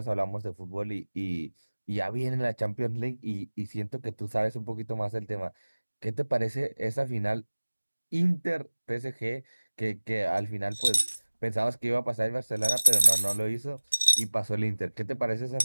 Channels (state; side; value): inverted; both; correlation -1.00